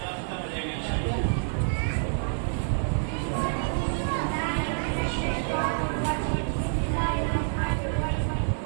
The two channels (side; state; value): left; silent; digital silence